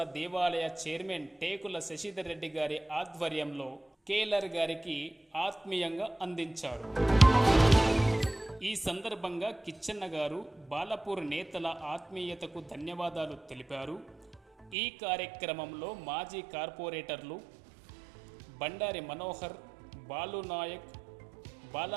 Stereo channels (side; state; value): left; drops out; at 14.8 s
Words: దేవాలయ చైర్మన్ టేకుల శశిధర్ రెడ్డి గారి ఆధ్వర్యంలో కేఎల్ఆర్ గారికి ఆత్మీయంగా అందించారు. ఈ సందర్భంగా కిచ్చెన్న గారు బాలాపూర్ నేతల ఆత్మీయతకు ధన్యవాదాలు తెలిపారు. ఈ కార్యక్రమంలో మాజీ కార్పొరేటర్లు బండారి మనోహర్, బాలునాయక్,